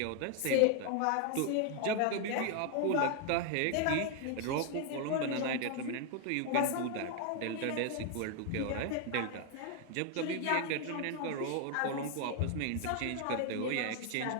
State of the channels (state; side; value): different; both; correlation 0.00